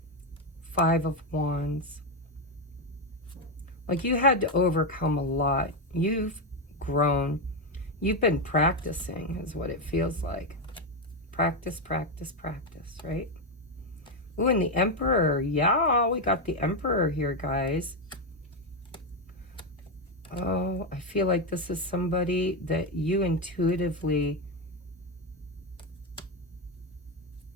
Five of Wands. Like you had to overcome a lot. You've grown. You've been practicing is what it feels like. Practice, practice, practice, right? Ooh, and the Emperor. Yeah, we got the Emperor here, guys. Oh, I feel like this is somebody that you intuitively...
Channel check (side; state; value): both; normal; correlation 0.07